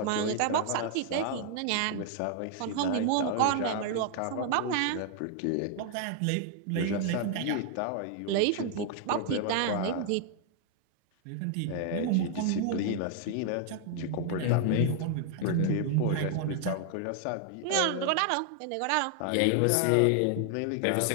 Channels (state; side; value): different; both; correlation 0.00